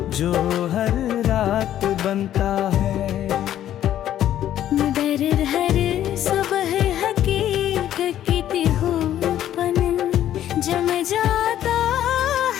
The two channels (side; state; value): right; quieter; 11.6 dB